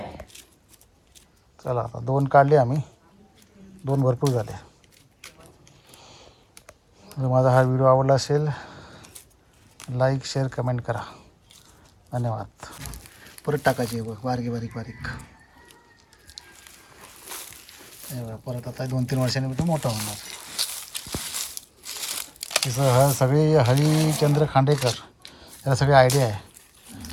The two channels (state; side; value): identical; both; correlation 1.00